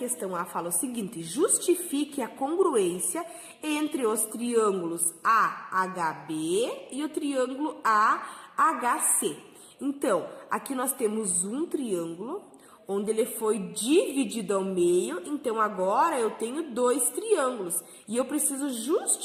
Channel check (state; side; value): identical; both; correlation 1.00